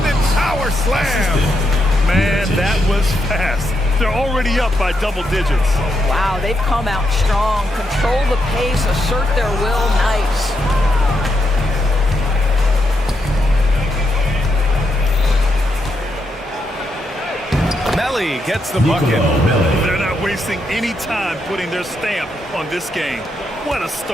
power slam. Man, that was fast. They're already up by double digits. Wow, they've come out strong. Control the pace, assert their will. Nice. Melly gets the bucket. They're not wasting any time putting their stamp on this game. What a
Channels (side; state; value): both; normal; correlation 0.81